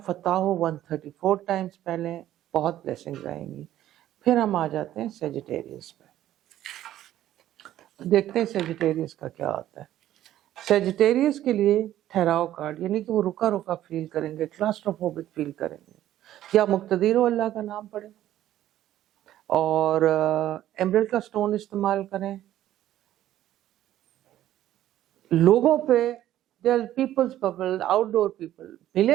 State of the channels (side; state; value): left; quieter; 12.9 dB